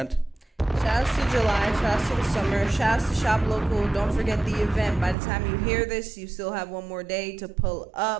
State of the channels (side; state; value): left; drops out; at 5.2 s